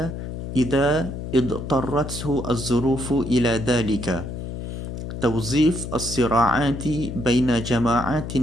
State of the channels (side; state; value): left; noise; hum, 7 dB below the sound